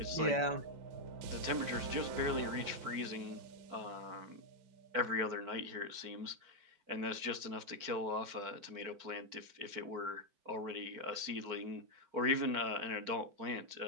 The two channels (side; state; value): left; late; 4.5 ms